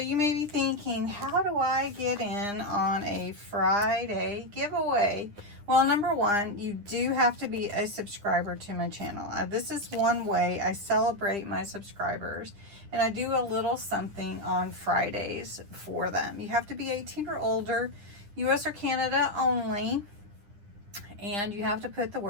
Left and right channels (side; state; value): left; late; 9.9 ms